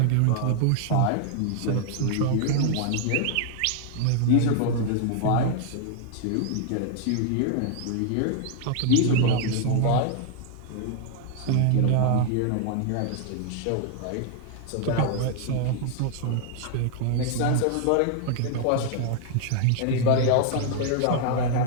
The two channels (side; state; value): both; different; correlation 0.00